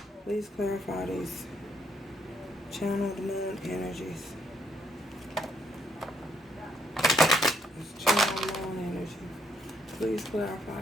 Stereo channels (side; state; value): both; normal; correlation 0.71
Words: Please clarify these channeled moon energies. This channel moon energy. Please clarify